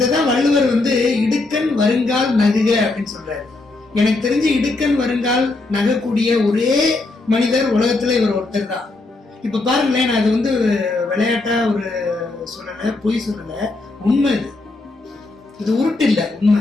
தான் வள்ளுவர் இடுக்கண் வருங்கால் நகுக அப்படின்னு சொல்றாரு. எனக்கு தெரிஞ்சு இடுக்கண் வருங்கால் நகக்கூடிய ஒரே மனிதர் உலகத்துல இவர் ஒருத்தர் தான். இப்ப பாருங்களேன், நான் அது விளையாட்டா ஒரு சொல்லல, பொய் சொல்லல, உண்மை. இது உருட்டு இல்ல, உண்மை.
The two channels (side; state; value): right; quieter; 3.2 dB